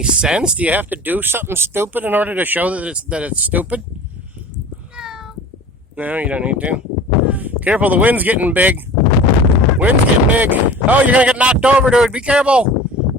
sense. Do you have to do something stupid in order to show that it's stupid? No. No, you don't need to. Careful, the wind's getting big. Wind's getting big. Oh, you're gonna get knocked over, dude. Be careful.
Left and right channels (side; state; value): both; normal; correlation 0.40